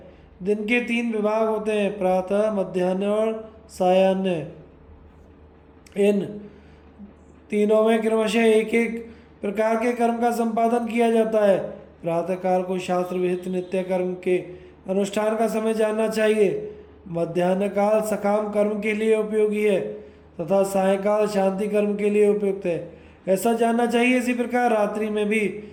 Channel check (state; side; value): identical; both; correlation 1.00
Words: दिन के 3 विभाग होते हैं, प्रातः, मध्याह्न और सायाह्न। इन तीनों में क्रमशः एक एक प्रकार के कर्म का संपादन किया जाता है। प्रातःकाल को शास्त्र विहित नित्य कर्म के अनुष्ठान का समय जानना चाहिए। मध्याह्न काल सकाम कर्म के लिए उपयोगी है तथा सायंकाल शांति कर्म के लिए उपयुक्त है, ऐसा जानना चाहिए। इसी प्रकार रात्रि में भी